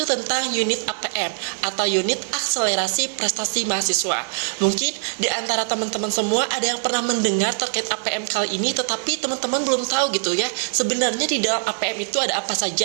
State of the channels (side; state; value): left; silent; 64 dB below the other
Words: tentang unit APM atau unit akselerasi prestasi mahasiswa. Mungkin di antara teman-teman semua ada yang pernah mendengar terkait APM kali ini, tetapi teman-teman belum tahu gitu ya, sebenarnya di dalam APM itu ada apa